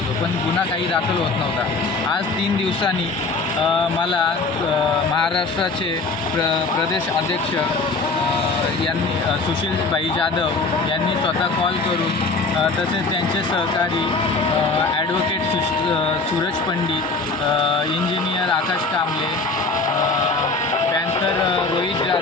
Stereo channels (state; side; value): quieter; right; 3.6 dB